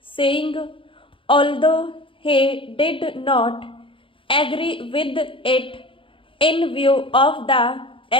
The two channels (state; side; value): late; right; 0.25 ms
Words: saying, although he did not agree with it in view of the